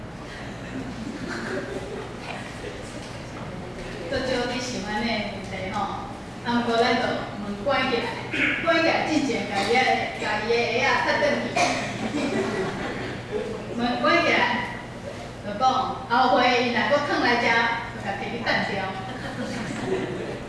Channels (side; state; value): both; identical; correlation 1.00